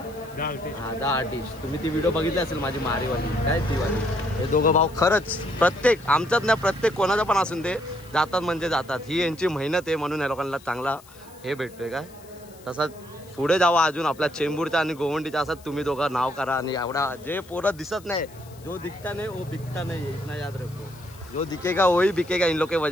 हा, द आर्टिस्ट. तुम्ही ती व्हिडिओ बघितली असेल माझी मारीवाली, काय ती वाली. हे दोघं भाऊ खरंच प्रत्येक आमच्यात नाही, प्रत्येक कोणाचं पण असून दे जातात म्हणजे जातात. ही यांची मेहनत आहे म्हणून या लोकांना चांगला हे भेटतोय. काय तसंच पुढे जावा अजून आपल्या चेंबूरचा आणि गोवंडीचा असं तुम्ही दोघं नाव करा. आणि एवढा जे पोरं दिसत नाही, जो दिखता नहीं वो बिकता नहीं, इतना याद रखो. जो दिखेगा वही बिकेगा, इन लोग के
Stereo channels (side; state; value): left; noise; hiss, 24 dB below the sound